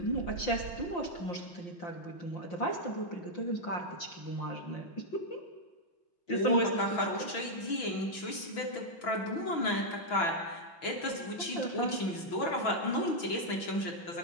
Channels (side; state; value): right; late; 6.1 ms